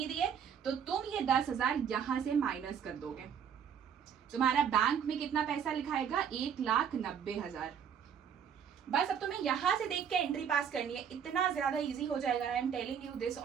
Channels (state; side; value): quieter; left; 8.0 dB